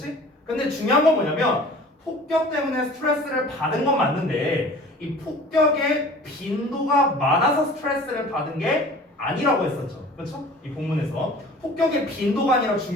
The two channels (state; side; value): normal; both; correlation 0.45